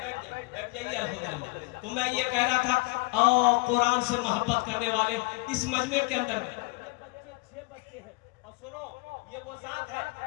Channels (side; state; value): right; quieter; 27.7 dB